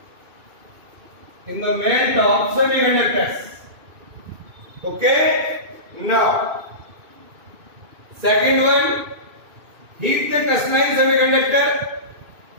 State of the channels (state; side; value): late; left; 2.6 ms